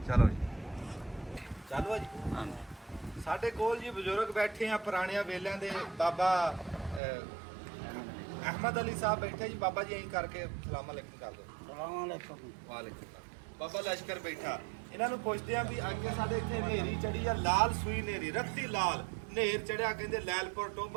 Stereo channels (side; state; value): left; drops out; at 7.0 s